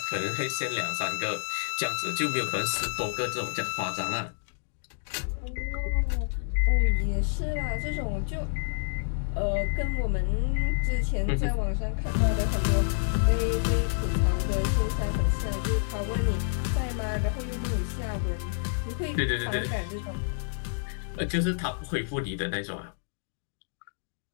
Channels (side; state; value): right; silent; digital silence